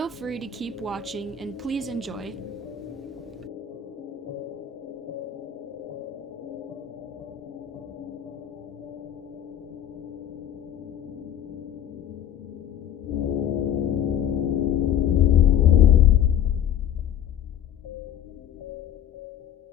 free to keep watching and please enjoy.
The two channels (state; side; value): quieter; right; 9.5 dB